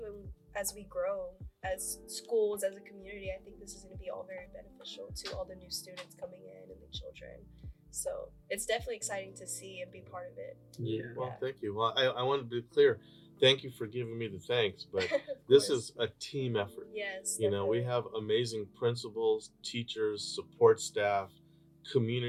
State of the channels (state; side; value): identical; both; correlation 1.00